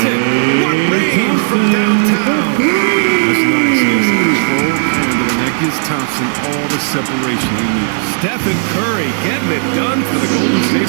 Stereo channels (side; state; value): left; silent; digital silence